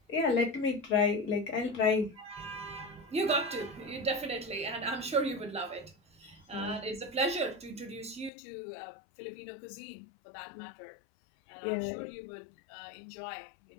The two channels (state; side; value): drops out; right; at 8.3 s